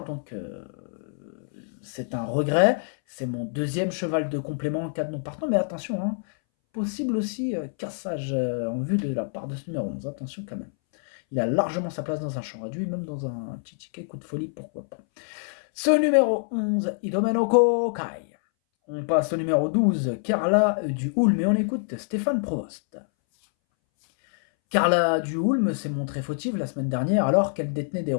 donc c'est un regret. C'est mon deuxième cheval de complément en cas de non partant, mais attention, possible aussi cassage en vue de la part de ce numéro 11. Attention quand même. Il a largement sa place dans un champ réduit, même dans un petit ticket coup de folie, pourquoi pas. Ce numéro 11, Idomeno Kokai. On passe au numéro 12, Carla du Hulme, et on écoute Stéphane Provost. Carla du Hulme s'est montrée fautive la semaine dernière alors qu'elle détenait des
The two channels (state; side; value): silent; right; 61 dB below the other